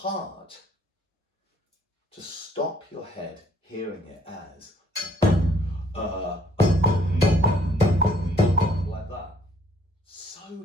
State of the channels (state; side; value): normal; both; correlation 0.63